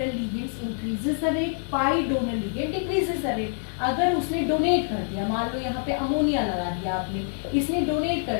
ligands increases the rate, pi donor ligand decreases the rate. अगर उसने डोनेट कर दिया, मान लो यहाँ पे अमोनिया लगा दिया आपने, इसने डोनेट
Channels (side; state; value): right; silent; 61 dB below the other